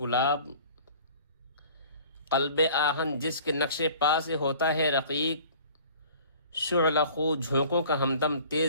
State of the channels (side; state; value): both; inverted; correlation -0.48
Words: قلب آہن جس کے نقش پا سے ہوتا ہے رقیق، شعلہ خو جھونکوں کا ہمدم،